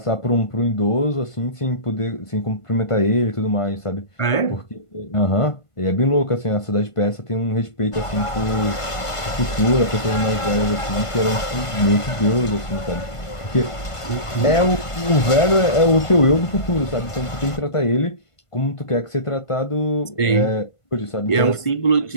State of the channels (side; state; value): right; late; 1.5 ms